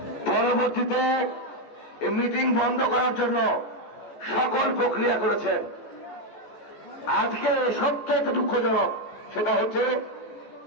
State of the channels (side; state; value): right; late; 14 ms